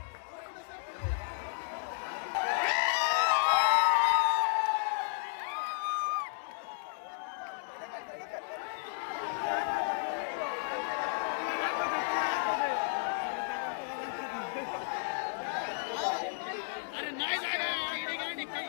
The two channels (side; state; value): right; silent; digital silence